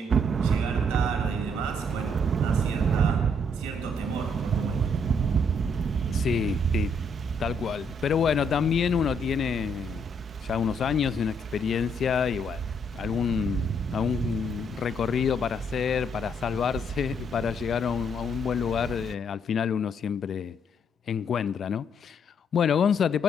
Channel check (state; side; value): normal; both; correlation 0.71